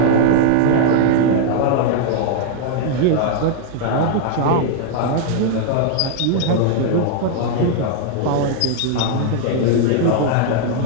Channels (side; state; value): both; different; correlation -0.01